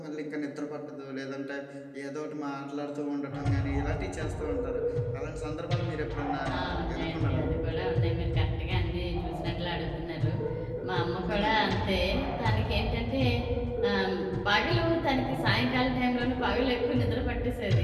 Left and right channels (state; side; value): identical; both; correlation 1.00